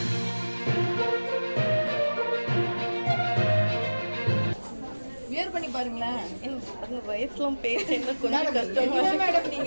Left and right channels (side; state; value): both; inverted; correlation -1.00